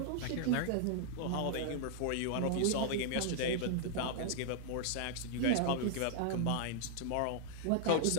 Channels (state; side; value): different; both; correlation -0.01